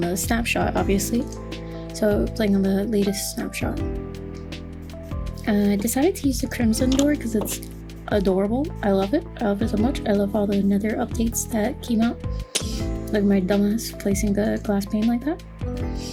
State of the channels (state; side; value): identical; both; correlation 1.00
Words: the snapshot, obviously. So playing on the latest snapshot. I decided to use the Crimson Door because it's adorable. I love it. I love it so much. I love all the Nether updates that came out. Look at my dumbass placing the glass pane like that.